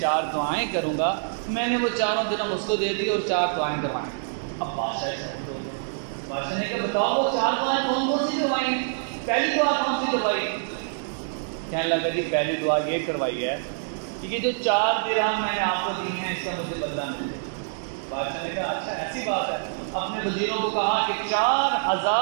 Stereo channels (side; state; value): left; silent; digital silence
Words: دعائیں کروں گا. میں نے وہ 4 درہم اس کو دے دی اور 4 دعائیں کروائیں. اب بادشاہ نے کہا بتاؤ وہ 4 دعائیں کون سی کروائی؟ پہلی دعا کون سی کروائی؟ کہنے لگا جی پہلی دعا یہ کروائی ہے کہ یہ جو 4 درہم میں نے آپ کو دی ہیں اس کا مجھے بدلہ مل جائے. بادشاہ نے کہا اچھا ایسی بات ہے. اپنے وزیروں کو کہا کہ